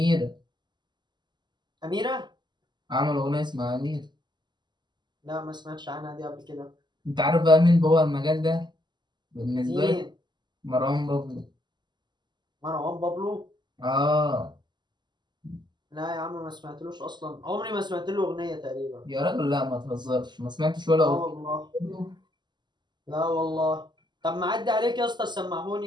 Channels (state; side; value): late; left; 0.21 ms